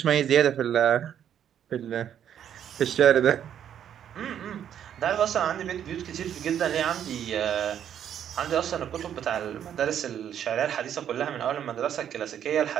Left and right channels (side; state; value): left; quieter; 9.6 dB